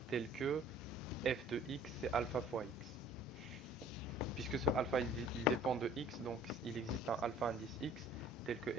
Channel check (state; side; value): normal; both; correlation 0.51